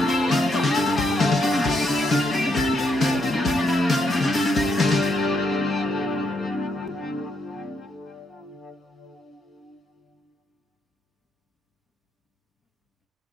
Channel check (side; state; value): both; normal; correlation 0.77